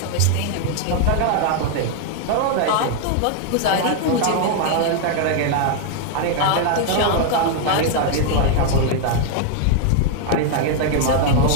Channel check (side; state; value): both; different; correlation 0.00